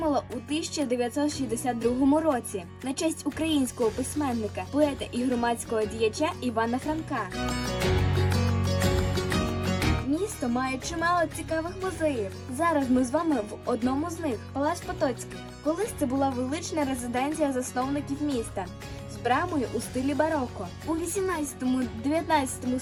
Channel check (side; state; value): both; identical; correlation 1.00